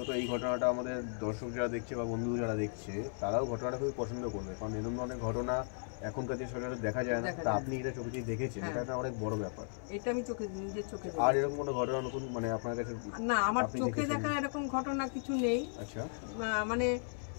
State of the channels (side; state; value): right; silent; 54 dB below the other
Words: এই ঘটনাটা আমাদের দর্শক যারা দেখছে বা বন্ধু যারা দেখছে তারাও ঘটনাটা খুবই পছন্দ করবে, কারণ এরকম অনেক ঘটনা এখনকার যে সচরাচর দেখা যায় না। তা আপনি এটা চোখে দিয়ে দেখেছেন, এটা অনেক বড় ব্যাপার। এটা আমি নিজের চোখে। আর এরকম কোনো ঘটনা নতুন মানে আপনার কাছে? না, আমার চোখে দেখা এরকম ঘটনা কিছু নেই। আচ্ছা, মানে